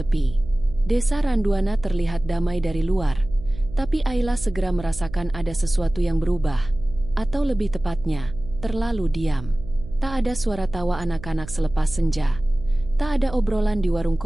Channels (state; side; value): noise; right; hum, 14 dB below the sound